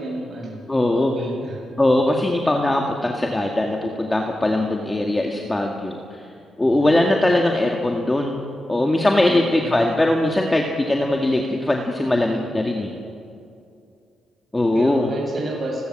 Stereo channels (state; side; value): normal; both; correlation 0.92